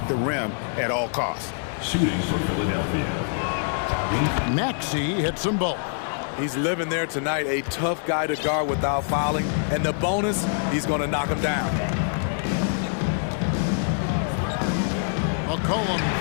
the rim at all costs. Shooting for Philadelphia. Maxey hits them both. He's living there tonight, a tough guy to guard without fouling. And the bonus, he's going to knock him down. McCollum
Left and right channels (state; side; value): silent; right; 62 dB below the other